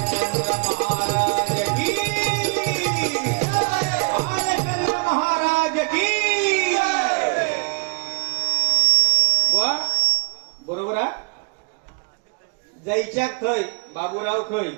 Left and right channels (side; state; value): left; quieter; 32.9 dB